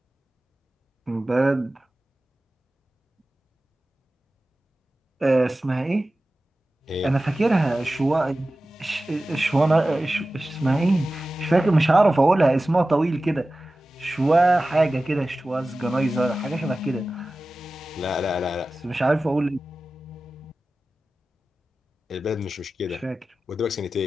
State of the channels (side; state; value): both; normal; correlation 0.95